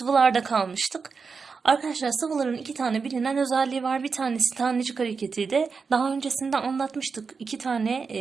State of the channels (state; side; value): quieter; left; 5.1 dB